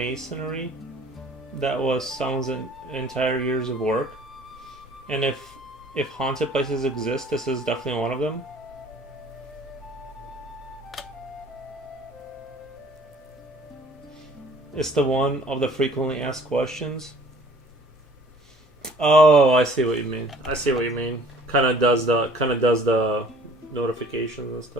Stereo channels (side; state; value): both; normal; correlation 0.52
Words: that was someone's entire years of work. And if haunted places exist, this is definitely one of them. It's the one of the frequently asked questions. Oh, I see what you mean. I see what you mean. Kind of does the notifications and